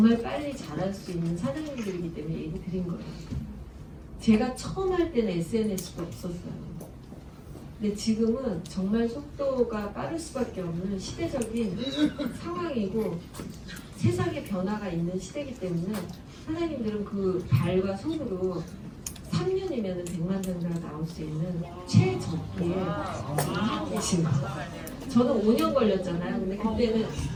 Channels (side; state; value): both; identical; correlation 1.00